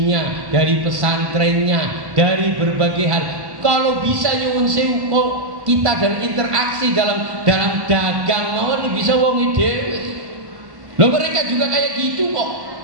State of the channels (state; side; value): late; left; 1.1 ms